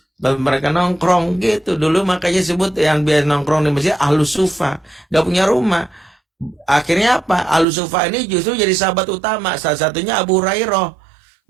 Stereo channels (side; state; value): left; drops out; at 7.7 s